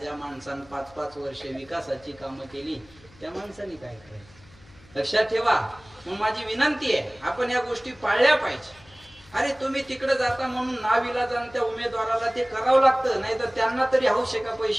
माणसानं 5-5 वर्षे विकासाची कामं केली त्या माणसाने काय करायचं? लक्षात ठेवा. मग माझी विनंती आहे, आपण या गोष्टी पाळल्या पाहिजे. अरे तुम्ही तिकडे जाता म्हणून नाविलाजानं त्या उमेदवाराला ते करावं लागतं, नाही तर त्यांना तरी हौस आहे का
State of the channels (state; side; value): noise; left; hum, 25 dB below the sound